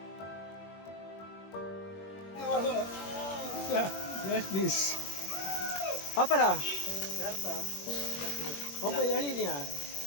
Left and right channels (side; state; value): right; late; 21 ms